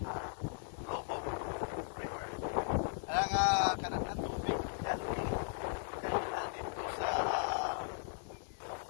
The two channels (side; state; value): right; silent; digital silence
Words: Lobok River. Kaya kanang tubig yan dito sa